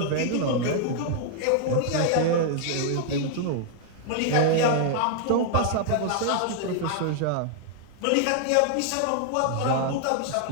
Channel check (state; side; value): different; both; correlation 0.00